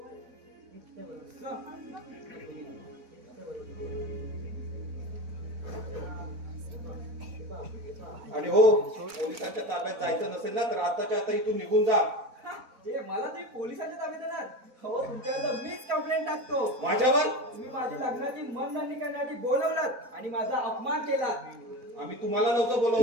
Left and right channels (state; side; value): late; left; 4.0 ms